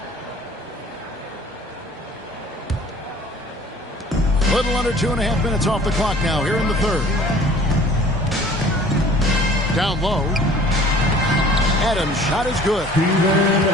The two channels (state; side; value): normal; both; correlation 0.50